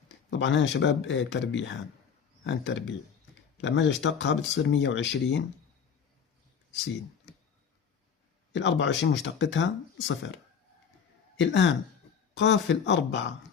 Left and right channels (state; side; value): quieter; right; 6.9 dB